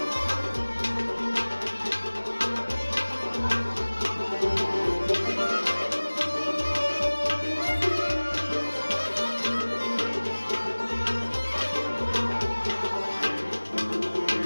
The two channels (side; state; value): both; inverted; correlation -1.00